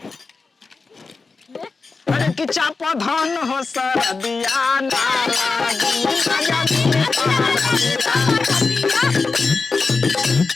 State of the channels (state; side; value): quieter; right; 4.2 dB